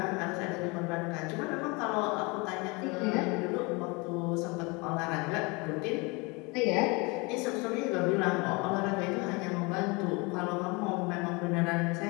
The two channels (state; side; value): quieter; right; 27.6 dB